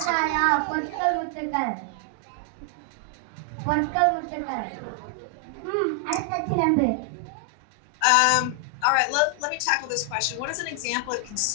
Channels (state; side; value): different; both; correlation 0.00